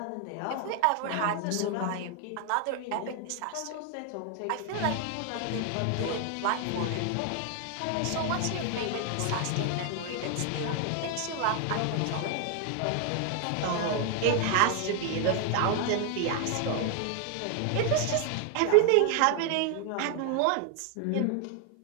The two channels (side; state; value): both; different; correlation 0.00